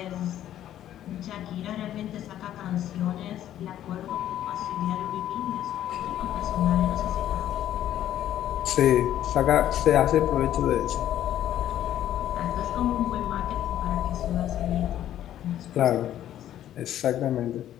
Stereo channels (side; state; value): right; quieter; 11.8 dB